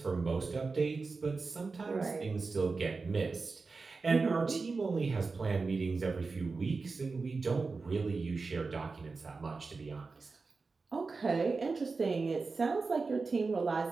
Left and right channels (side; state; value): left; quieter; 4.2 dB